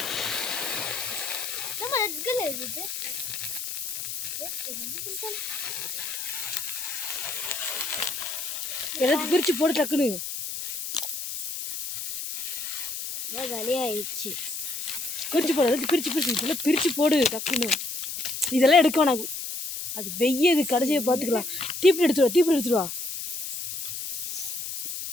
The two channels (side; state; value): left; noise; hiss, 5 dB below the sound